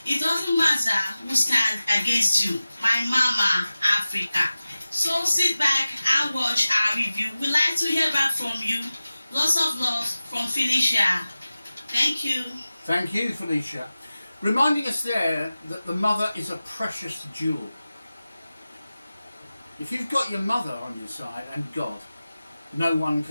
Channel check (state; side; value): inverted; both; correlation -0.96